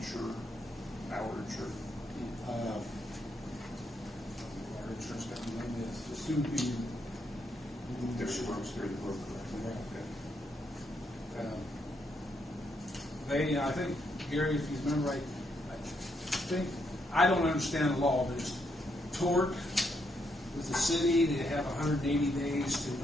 Our insurer? Our insurance company name is the soon be. There's works through the broker. Okay. They, I think, Gary, if you remember right, I don't understand the law, but it's tort with the city. They have 180 days to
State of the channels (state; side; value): normal; both; correlation 0.77